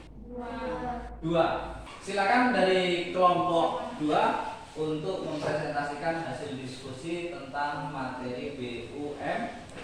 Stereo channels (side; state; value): both; identical; correlation 1.00